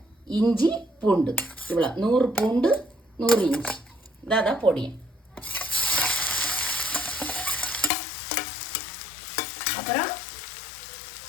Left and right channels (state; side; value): drops out; right; at 7.9 s